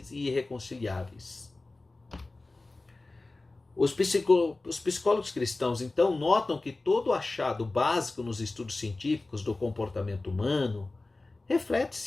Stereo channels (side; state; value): right; quieter; 3.2 dB